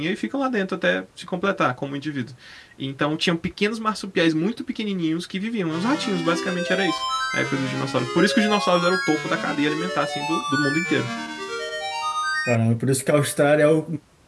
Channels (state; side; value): identical; both; correlation 1.00